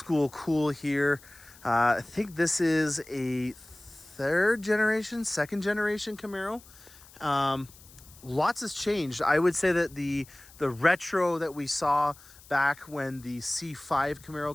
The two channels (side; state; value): left; noise; hiss, 23 dB below the sound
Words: cool here. I think this is a second generation Camaro. Lots has changed. I would say that the retro that we saw back when the C5 Camaro